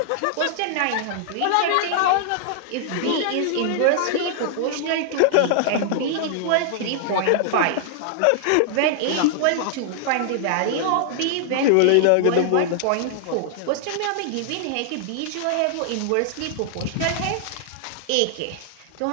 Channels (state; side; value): different; both; correlation -0.01